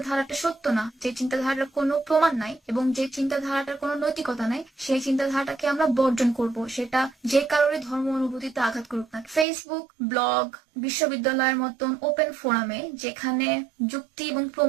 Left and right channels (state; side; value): drops out; left; at 9.5 s